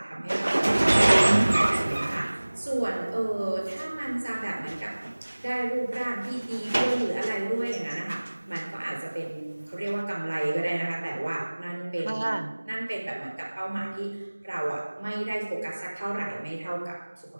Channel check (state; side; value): inverted; both; correlation -1.00